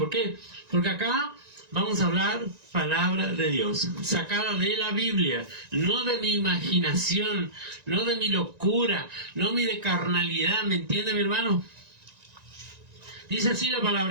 qué? Porque acá vamos a hablar palabra de Dios, sacada de la Biblia, no de mi imaginación, no de mi locura, no de carnalidad. ¿Me entiende, mi hermano? Dice así la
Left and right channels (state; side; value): late; left; 1.9 ms